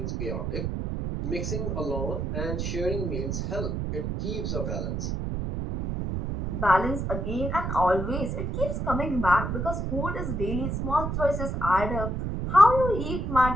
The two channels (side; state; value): right; noise; rumble, 2 dB below the sound